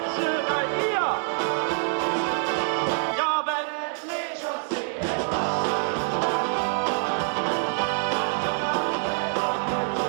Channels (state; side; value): silent; left; digital silence